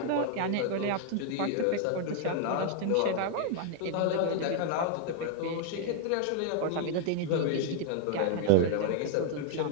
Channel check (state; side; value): different; both; correlation 0.00